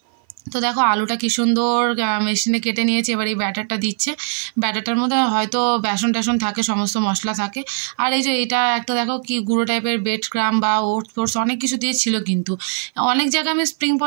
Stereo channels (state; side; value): silent; left; 57 dB below the other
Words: তো দেখো আলুটা কি সুন্দর মেশিনে কেটে নিয়েছে। এবার এই ব্যাটারটা দিচ্ছে। ব্যাটারটার মধ্যে হয়তো বেসন টেসন থাকে, সমস্ত মশলা থাকে। আর এই যে এটা একটা দেখো কি গুঁড়ো টাইপের বেড ক্রাম বা ওটস ফোটস অনেক কিছু দিয়ে ছিল। কিন্তু অনেক জায়গায় আমি স্প্রিং